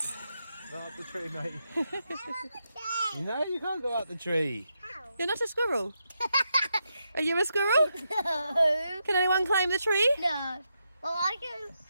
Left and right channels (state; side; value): inverted; both; correlation -0.84